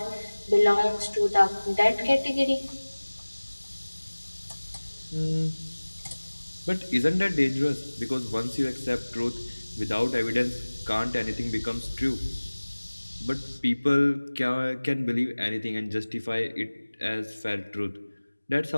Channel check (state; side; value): inverted; both; correlation -1.00